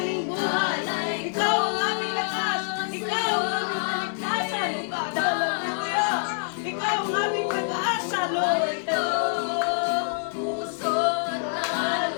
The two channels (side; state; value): right; silent; digital silence